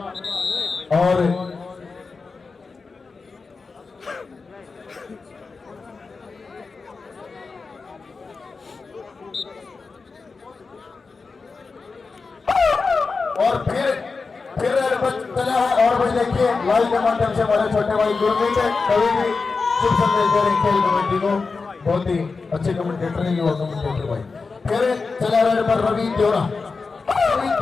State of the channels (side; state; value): right; quieter; 4.4 dB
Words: और फिर चला है और भाई देखिए लाइव के माध्यम से हमारे छोटे भाई गुरमीत कभी भी शुभ संदेश दे रहे खेल कमेटी को, बहुत ही अच्छे कमेंटेटर है युवा कमेंटेटर भाई। फिर चला रेड पर रवि देवरा